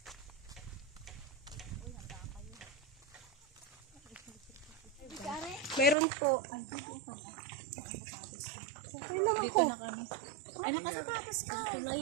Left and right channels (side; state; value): left; drops out; at 6.0 s